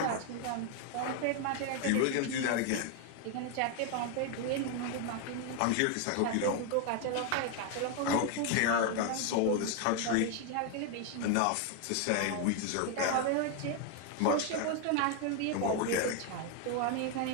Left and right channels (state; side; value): different; both; correlation 0.01